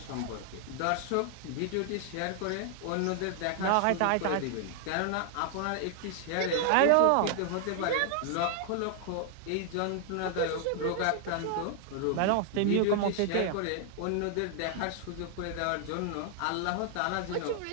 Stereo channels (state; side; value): different; both; correlation 0.00